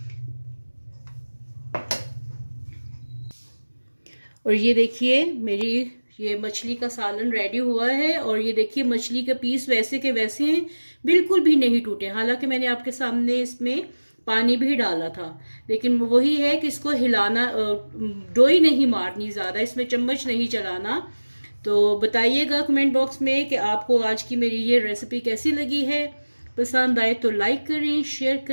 और ये देखिए मेरी ये मछली का सालन रेडी हुआ है। और ये देखिए मछली के पीस वैसे के वैसे हैं, बिल्कुल भी नहीं टूटे। हालांकि मैंने आपके सामने इसमें पानी भी डाला था, लेकिन वही है कि इसको हिलाना, डोई नहीं मारनी ज़्यादा, इसमें चम्मच नहीं चलाना। तो बताइएगा कमेंट बॉक्स में कि आपको आज की मेरी ये रेसिपी कैसी लगी है। पसंद आए तो लाइक करें, शेयर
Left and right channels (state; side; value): inverted; both; correlation -1.00